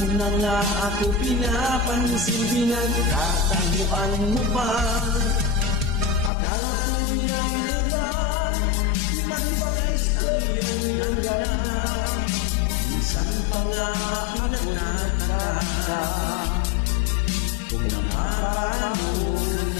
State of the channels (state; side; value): drops out; right; at 6.3 s